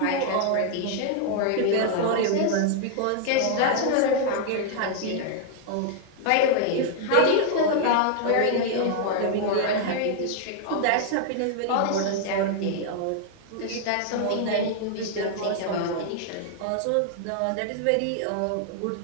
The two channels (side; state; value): both; different; correlation 0.00